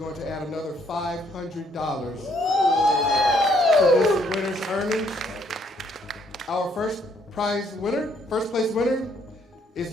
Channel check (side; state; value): both; normal; correlation 0.68